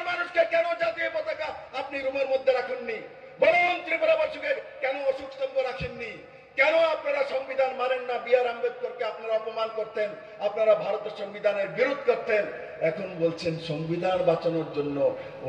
মানুষকে কেন জাতীয় পতাকা আপনি রুমের মধ্যে রাখেননি? বলুন ত্রিপুরাবাসীকে কেন অশোক স্তম্ভ রাখেননি? কেন আপনারা সংবিধান মানেন না? বি.আর. আম্বেদকরকে আপনারা অপমান করতেন, আপনারা ভারতের সংবিধানের বিরোধ করতেন। এখন বলছেন সংবিধান বাঁচানোর জন্য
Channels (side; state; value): both; identical; correlation 1.00